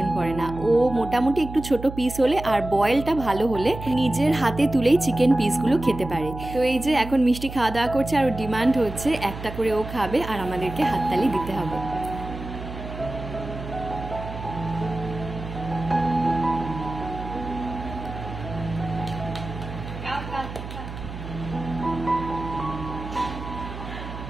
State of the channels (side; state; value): right; noise; hum, 10 dB below the sound